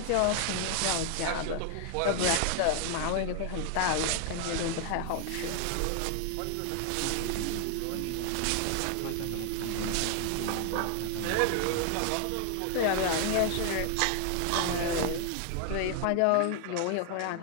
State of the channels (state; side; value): different; both; correlation 0.00